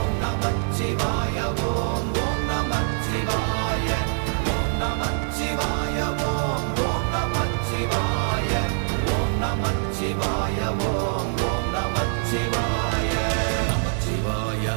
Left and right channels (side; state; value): left; silent; digital silence